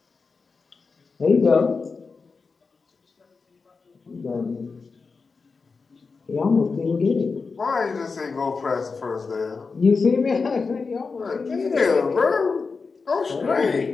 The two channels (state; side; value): quieter; right; 4.6 dB